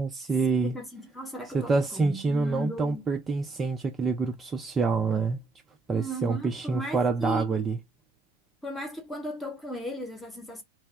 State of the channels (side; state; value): left; quieter; 3.5 dB